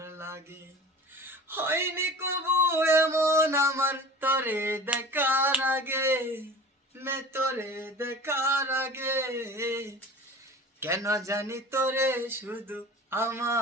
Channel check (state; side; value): normal; both; correlation 0.39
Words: লাগে। হয়নি কবু এমন আমার তোরে দেখার আগে, তোরে দেখার আগে। কেন জানি তোরে শুধু